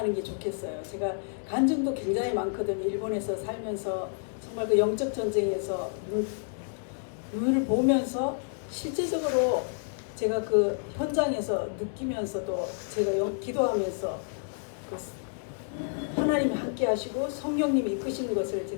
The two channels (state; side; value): silent; right; digital silence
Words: 게 좋겠어요. 제가 간증도 굉장히 많거든요. 일본에서 살면서 정말 그 영적 전쟁에서 눈을 보면서 실제적으로 제가 그 현장에서 느끼면서도 제가 기도하면서 하나님이 함께 하시고 성령님이 이끄시는 것을